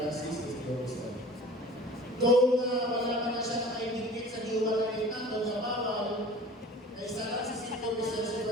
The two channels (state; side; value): normal; both; correlation 0.43